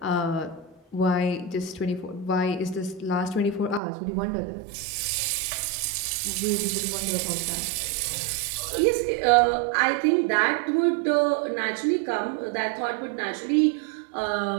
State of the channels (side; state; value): left; drops out; at 3.8 s